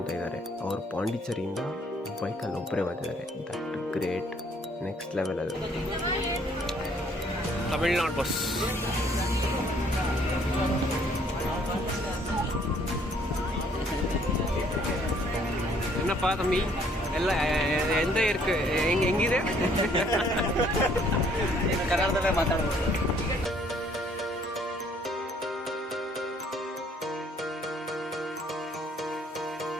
ಇದ್ದಾರೆ, ಅವರು ಪಾಂಡಿಚೇರಿಯಿಂದ ಬೈಕಲ್ಲಿ ಒಬ್ಬರೇ ಬಂದಿದ್ದಾರೆ. That great, next level. ಅದು ತಮಿಳ್ನಾಡು ಬಸ್. என்னப்பா தம்பி எல்லாம் எந்த இருக்கு ಹೆಂಗಿದೆ? ಕನ್ನಡದಲ್ಲೇ ಮಾತಾಡೋದು.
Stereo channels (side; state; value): both; normal; correlation 0.62